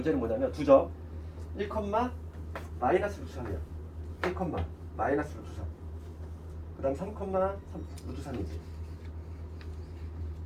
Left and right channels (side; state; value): both; identical; correlation 1.00